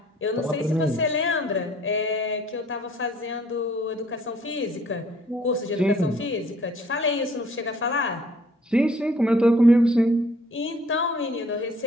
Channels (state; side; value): normal; both; correlation 0.59